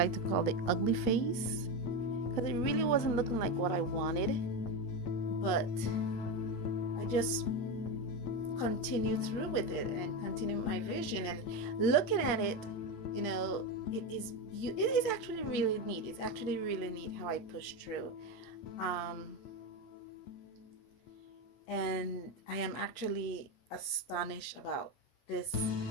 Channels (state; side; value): late; right; 8.3 ms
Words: to call the ugly phase, because it really wasn't looking like what I wanted, but I just continued through with it and continued my vision, and looking at it, you know, it is actually really neat. It's actually really neat how I pushed through. And I am actually astonished about this